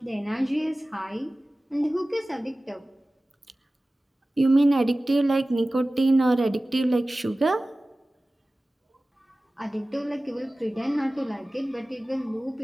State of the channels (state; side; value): normal; both; correlation 0.97